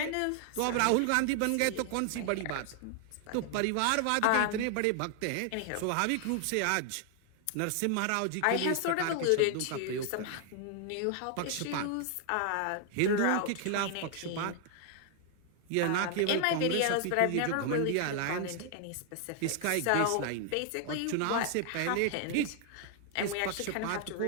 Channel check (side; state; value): both; different; correlation 0.00